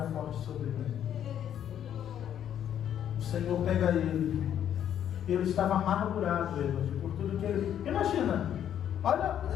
forte sobre mim. O Senhor pega ele estava amargurado, Edward, por tudo que ele... Imagina, olha,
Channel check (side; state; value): right; quieter; 10.0 dB